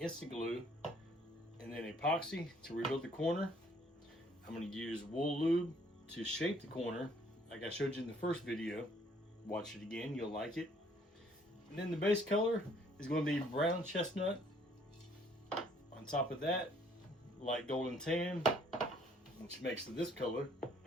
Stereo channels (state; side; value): normal; both; correlation 0.62